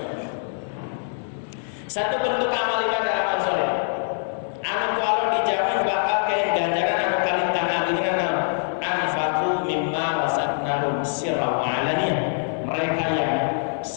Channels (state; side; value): silent; right; digital silence